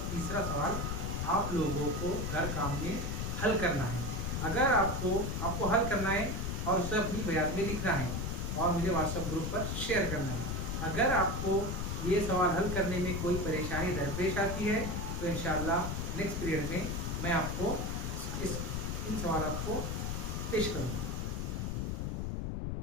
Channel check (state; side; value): noise; left; rumble, 2 dB below the sound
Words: तीसरा सवाल आप लोगों को घर काम में हल करना है। अगर आपको हल करना है और उसे अपनी बयान में लिखना है और मुझे व्हाट्सएप ग्रुप पर शेयर करना है। अगर आपको ये सवाल हल करने में कोई परेशानी दरपेश आती है तो इंशाल्लाह नेक्स्ट पीरियड में मैं आपको इन सवालों को पेश करूँगा।